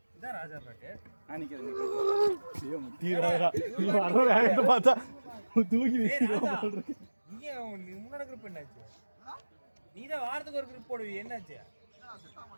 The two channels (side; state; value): both; inverted; correlation -1.00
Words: இதான் ராஜா பேட்டு. நான் நிக்கிறேன். ஐயோ முத்திராடா. நீ வர வேகத்தை பார்த்தா தூக்கி வீசிடுறா. நீங்க முன்னாடி குரூப் என்னாச்சு? நீ தான் வாரத்துக்கு ஒரு குரூப் போடுவீ. என்னாச்சு?